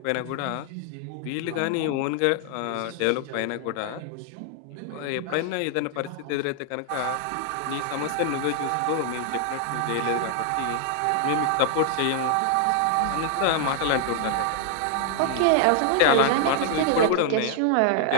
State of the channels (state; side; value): different; both; correlation 0.00